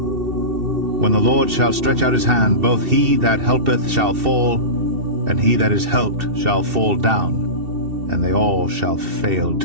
the Lord shall stretch out his hand, both he that helpeth shall fall, and he that is helped shall fall down, and they all shall fail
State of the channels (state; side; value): late; left; 2.7 ms